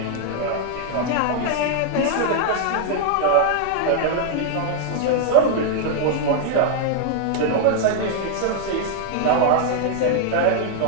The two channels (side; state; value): both; different; correlation 0.00